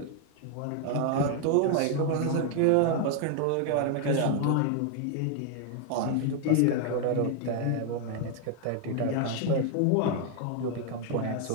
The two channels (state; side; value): different; both; correlation 0.00